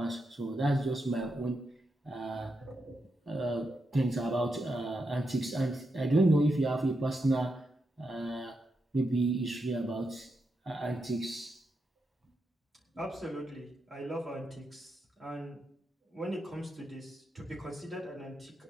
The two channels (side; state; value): both; normal; correlation 0.85